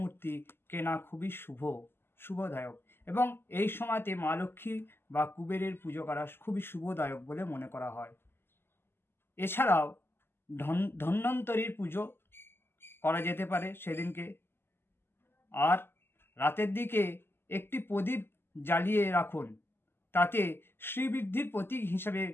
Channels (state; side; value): late; right; 0.11 ms